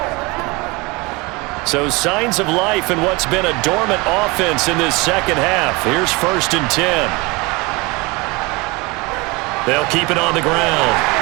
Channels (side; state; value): left; quieter; 25.3 dB